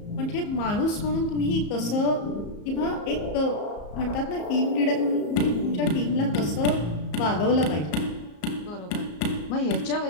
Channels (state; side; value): late; right; 34 ms